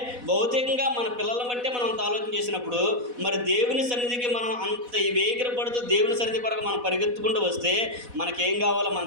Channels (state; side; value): late; left; 4.1 ms